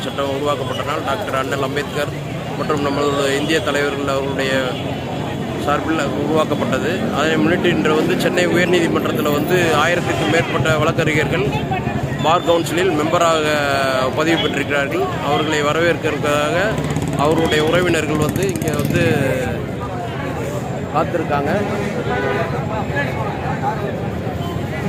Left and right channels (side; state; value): both; identical; correlation 1.00